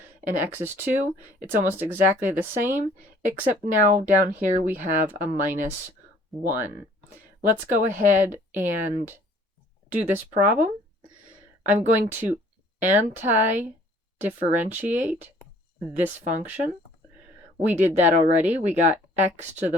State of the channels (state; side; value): normal; both; correlation 0.56